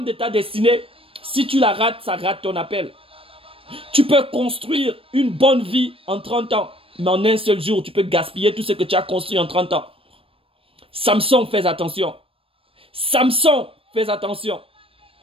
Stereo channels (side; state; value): left; late; 0.27 ms